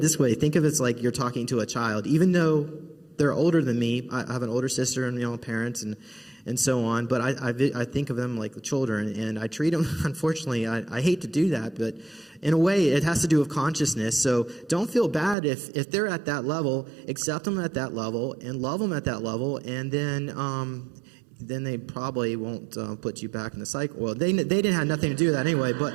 this way. Think of it as like you're talking to a child, even though they're older than me. I have an older sister and parents and so on, but I think of them like children, and I treat them, unfortunately, I hate to do that, but in a way it has to do with consciousness. So don't feel bad if they're at that level. Accept them at that level and love them at that level, and then they probably won't put you back in the cycle. Well, they didn't have nothing to do with that anyway,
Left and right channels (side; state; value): left; drops out; at 15.4 s